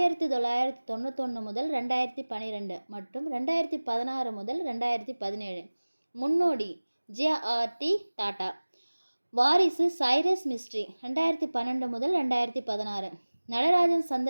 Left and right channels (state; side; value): inverted; both; correlation -1.00